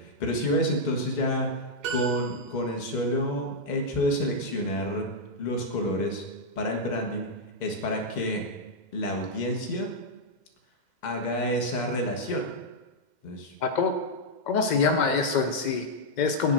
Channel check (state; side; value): late; right; 2.1 ms